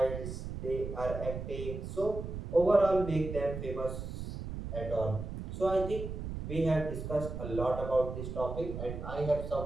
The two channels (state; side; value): noise; right; rumble, 7 dB below the sound